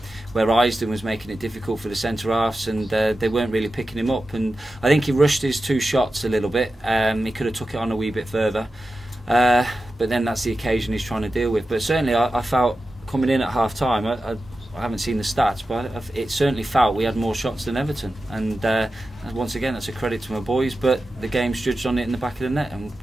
where Isden was making it difficult for the centre halves, and they weren't really picking him up. And I think he rushed his 2 shots a little bit. He could have took it on a wee bit further, but then that's the occasion he's trying to deal with. But certainly, I felt coming in at half time. I haven't seen the stats, but it certainly felt we had more shots than Everton. And once again, that's a credit to my boys. But the game's judged on it in the back of the net, and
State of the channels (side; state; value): both; normal; correlation 0.92